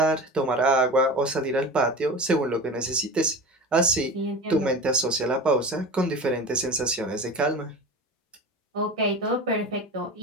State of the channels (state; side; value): normal; both; correlation 0.31